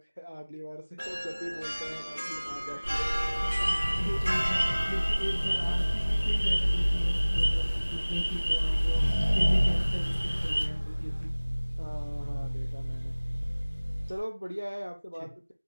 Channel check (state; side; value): inverted; both; correlation -1.00